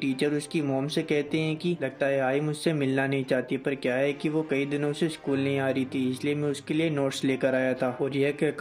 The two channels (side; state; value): both; identical; correlation 1.00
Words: उसकी मॉम से कहते हैं कि लगता है आई मुझसे मिलना नहीं चाहती, पर क्या है कि वो कई दिनों से स्कूल नहीं आ रही थी, इसलिए मैं उसके लिए नोट्स लेकर आया था। और यह